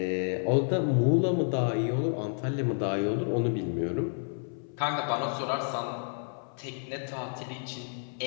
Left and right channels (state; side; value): silent; right; 58 dB below the other